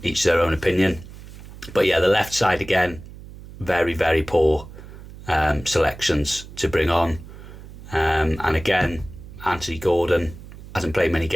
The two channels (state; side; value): noise; right; hum, 16 dB below the sound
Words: their own opinion. But yeah, the left side again, very, very poor selections to bring on. And again, Anthony Gordon hasn't played many